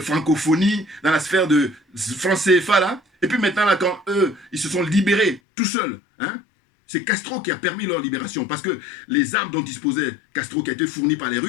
francophonie, dans la sphère de France CFA, là. Et puis maintenant, là, quand eux, ils se sont libérés tout seuls, hein, c'est Castro qui a permis leur libération. Parce que les armes dont disposait Castro, qui a été fournies par les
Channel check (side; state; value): right; drops out; at 5.4 s